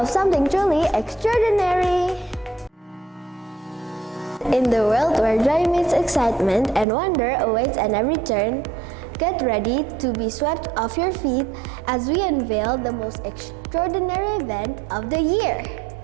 something truly extraordinary. In the world where joy meets excitement and wonder awaits at every turn, get ready to be swept off your feet as we unveil the most extraordinary event of the year.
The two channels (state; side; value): drops out; left; at 6.9 s